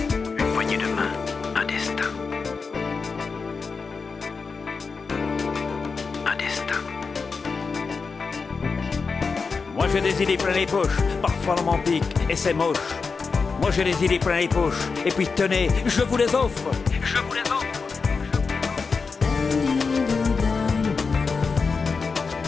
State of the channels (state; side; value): quieter; right; 4.8 dB